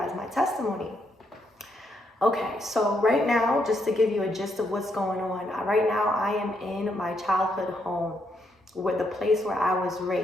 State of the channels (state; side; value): normal; both; correlation 0.77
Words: my testimony. Okay, so right now, just to give you a gist of what's going on, right now I am in my childhood home, the place where I was